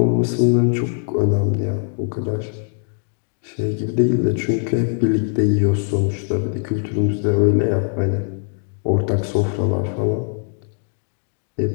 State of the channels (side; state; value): right; silent; digital silence